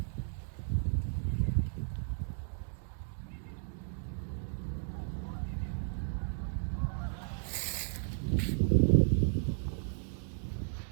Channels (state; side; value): silent; left; 55 dB below the other